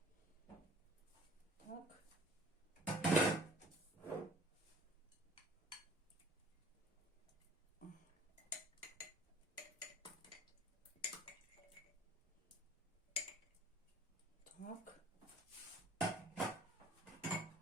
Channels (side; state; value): both; normal; correlation 0.52